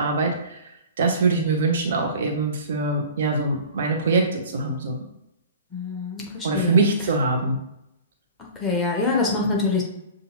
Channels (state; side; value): inverted; both; correlation -0.40